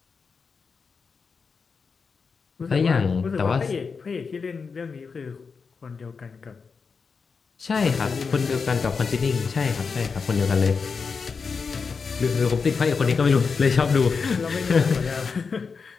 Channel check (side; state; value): right; quieter; 5.2 dB